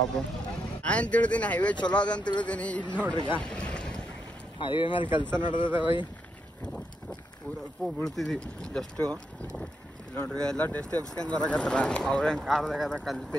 ನಾನು ತಿಳಿದೀನಿ ಹೈವೇ ಚಲೋ ಅದ ಅಂತ ತಿಳಿದೀನಿ. ಇಲ್ಲಿ ನೋಡ್ರಿ ಈಗ ಹೈವೇ ಮೇಲೆ ಕೆಲಸ ನಡೆದದ ಬೈ. ಊರಪ್ಪು ಬೀಳ್ತಿದ್ವಿ ಜಸ್ಟು. ಇಲ್ಲಿ ನೋಡ್ರಿ ಎಲ್ಲ ಟೆಸ್ಟ್ ಎಬ್ಸ್ಕೊಂಡು ಬರಕತ್ತಾರ. ಅವ್ರೇನು ಕಾರ್ದಾಗದ ಕಲ್ಲು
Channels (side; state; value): both; normal; correlation 0.81